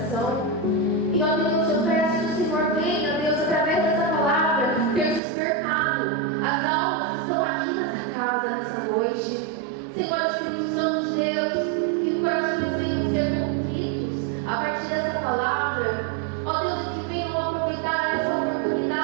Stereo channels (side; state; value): left; drops out; at 5.2 s